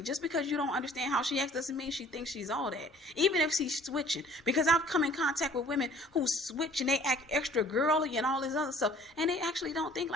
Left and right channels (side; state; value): both; normal; correlation 0.53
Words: Just because you don't understand how she acts doesn't mean she thinks she's all that. Even if she's switching. Because I've come in contact with women who switch and they act extra girly and all this other stuff. And they actually don't think